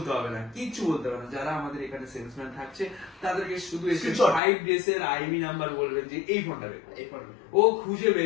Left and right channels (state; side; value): drops out; right; at 4.4 s